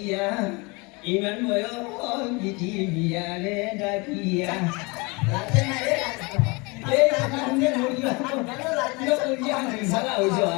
ইমান বয়স বিটি বিয়ারে ডাকিয়া এই কারণে মরিয়া সারা হইছে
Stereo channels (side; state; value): right; quieter; 27.5 dB